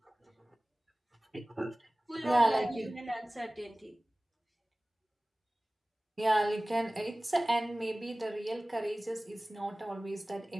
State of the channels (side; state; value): both; normal; correlation 0.98